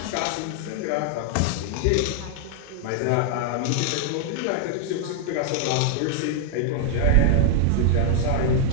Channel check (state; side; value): different; both; correlation -0.01